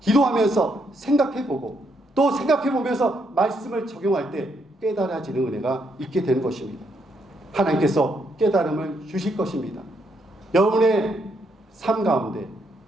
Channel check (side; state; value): both; normal; correlation 0.75